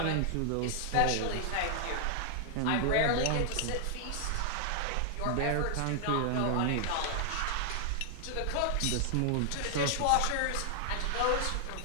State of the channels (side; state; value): both; different; correlation 0.00